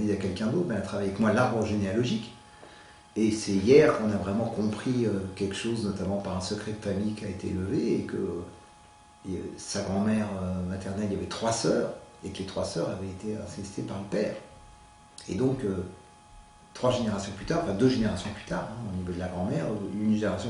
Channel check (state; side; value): identical; both; correlation 1.00